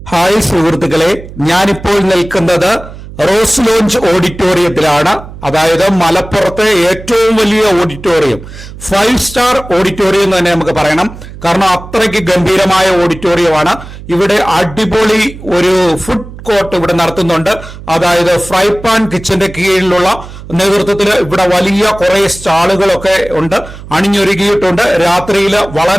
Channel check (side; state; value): right; noise; hum, 15 dB below the sound